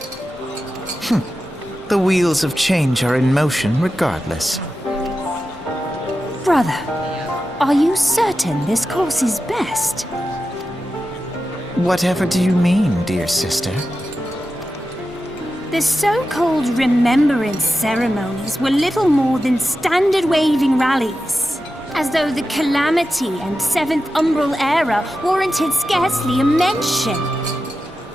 The wheels of change are in motion regardless. Brother, are you certain this course is best? Whatever do you mean, dear sister? The so-called remembrance ceremonies were little more than standard waving rallies. As though the Calamity and Seventh Umbral era warranted scarcely a mention.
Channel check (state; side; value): normal; both; correlation 0.92